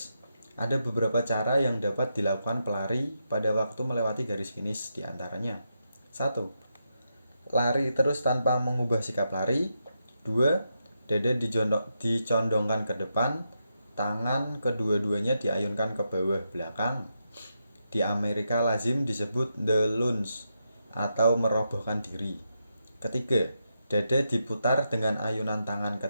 Ada beberapa cara yang dapat dilakukan pelari pada waktu melewati garis finish, diantaranya 1. Lari terus tanpa mengubah sikap lari. 2. Dada dicondongkan ke depan, tangan kedua-duanya diayunkan ke bawah belakang. Di Amerika lazim disebut the lunge atau merobohkan diri. Ketiga, dada diputar dengan ayunan tangan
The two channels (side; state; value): both; inverted; correlation -0.84